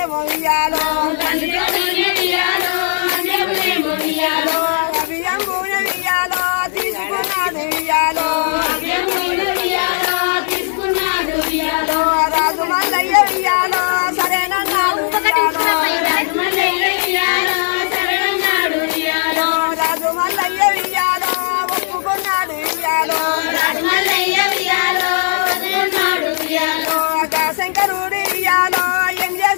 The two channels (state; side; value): silent; right; 56 dB below the other